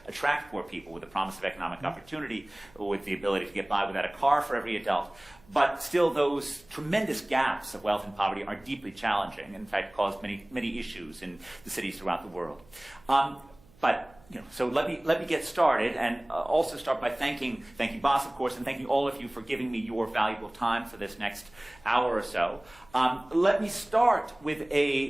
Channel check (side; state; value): right; noise; hum, 27 dB below the sound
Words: attract poor people with the promise of economic opportunity, with the ability to get by without a car for every adult. But still, those tremendous gaps of wealth and poverty are deeply challenging, and in fact cause many issues in the cities throughout the world. So let me get started, and also start by thanking Bas, of course, and thanking all of you for giving me your valuable time for this next hour or so. Let me start with